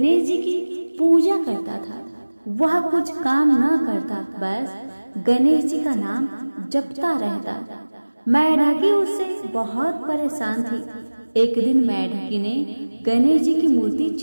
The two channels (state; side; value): inverted; both; correlation -1.00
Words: जी की पूजा करता था। वह कुछ काम न करता, बस गणेश जी का नाम जपता रहता। मेढकी उससे बहुत परेशान थी। एक दिन मेढकी ने गणेश जी की मूर्ति